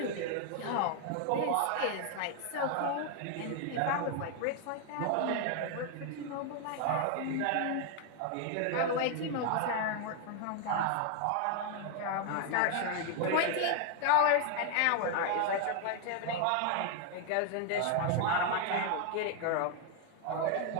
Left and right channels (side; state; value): both; different; correlation 0.00